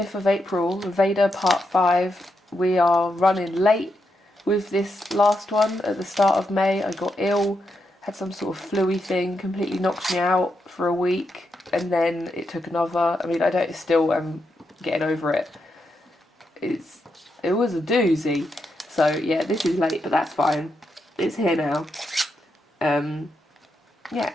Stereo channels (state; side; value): normal; both; correlation 0.83